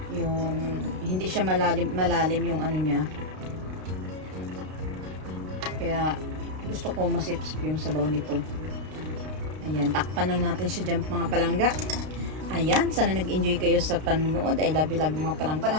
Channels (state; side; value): late; left; 32 ms